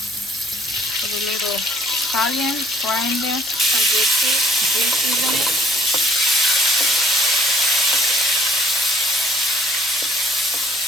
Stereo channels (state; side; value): noise; right; hum, 28 dB below the sound